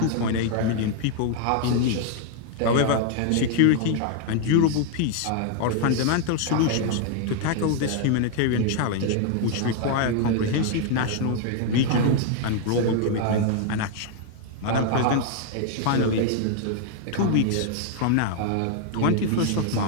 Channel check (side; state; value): both; different; correlation 0.00